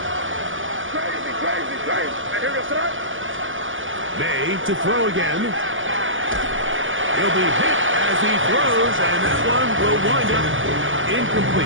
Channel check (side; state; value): left; late; 0.57 ms